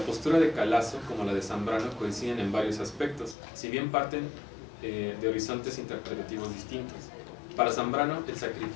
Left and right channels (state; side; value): drops out; right; at 3.4 s